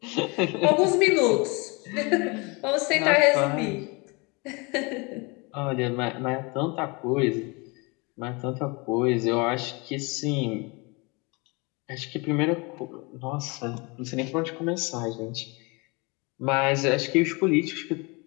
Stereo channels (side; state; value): right; quieter; 28.3 dB